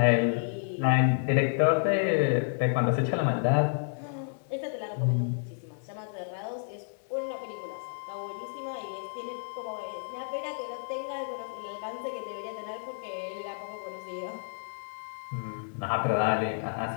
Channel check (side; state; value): right; silent; digital silence